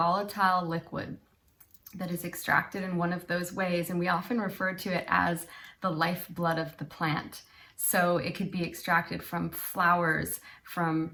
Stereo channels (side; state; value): both; identical; correlation 1.00